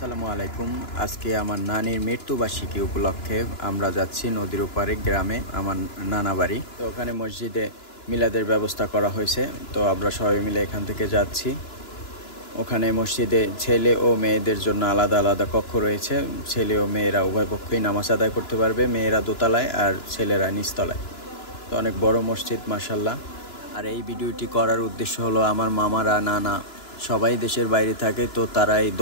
আলাইকুম। আজকে আমার নানির মৃত্যুবার্ষিকী উপলক্ষে আমরা যাচ্ছি নদীর ওপারে গ্রামে, আমার নানা বাড়ি। তো ওখানে মসজিদে মিলাদের ব্যবস্থা করা হয়েছে। তো আমরা সবাই মিলে এখান থেকে যাচ্ছি। ওখানে মসজিদে ছেলে ও মেয়েদের জন্য আলাদা আলাদা কক্ষ রয়েছে। ছেলে ও মেয়েরা উভয় পক্ষই নামাজ আদায় করতে পারবে। মেয়েরা দোতলায় আর ছেলেরা নিচতলায়। তো অনেক বড় মসজিদ মাশাআল্লাহ। আর এই ভিডিওটি করার উদ্দেশ্য হলো আমার মামারা, নানা সবাই দেশের বাইরে থাকে, তো তারা এই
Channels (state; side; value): late; right; 2.9 ms